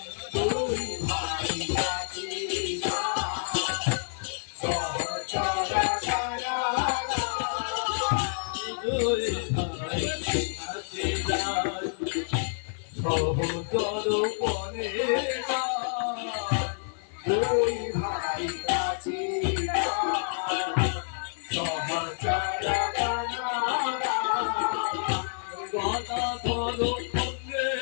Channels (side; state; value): right; silent; digital silence